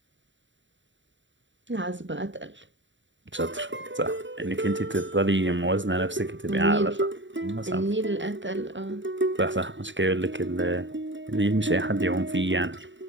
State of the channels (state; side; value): late; left; 0.54 ms